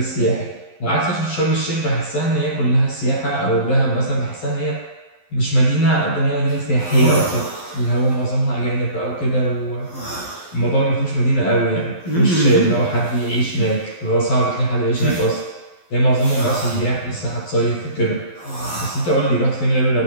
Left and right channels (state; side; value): late; right; 12 ms